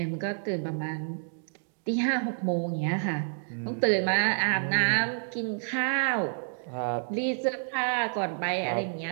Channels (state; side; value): silent; left; digital silence